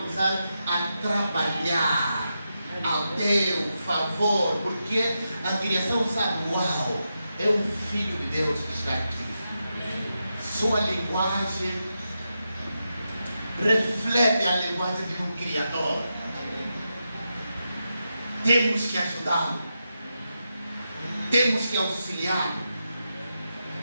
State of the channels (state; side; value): inverted; both; correlation -0.87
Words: a trabalhar ao teu favor, porque a criação sabe, uau, é um filho de Deus que está aqui. Sua linguagem reflete a linguagem de um Criador. Temos que ajudá-lo. Temos que auxiliá-lo.